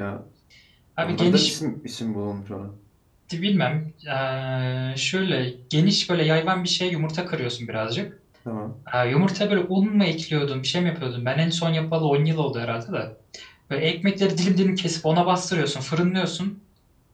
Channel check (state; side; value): identical; both; correlation 1.00